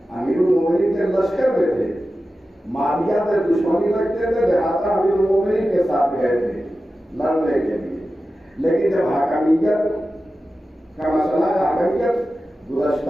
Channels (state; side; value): normal; both; correlation 0.93